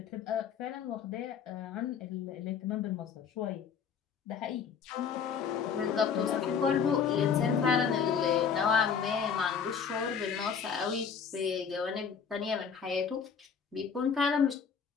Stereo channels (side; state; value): right; quieter; 6.7 dB